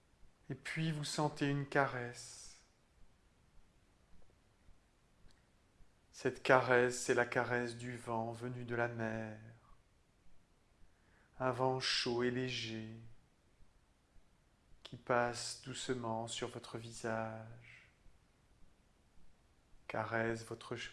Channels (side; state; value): both; identical; correlation 1.00